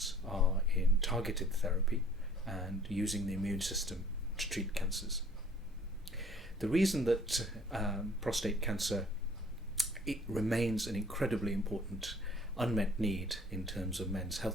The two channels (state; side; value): normal; both; correlation 0.54